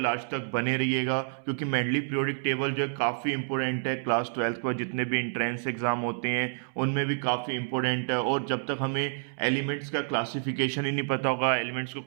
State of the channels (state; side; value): silent; left; 59 dB below the other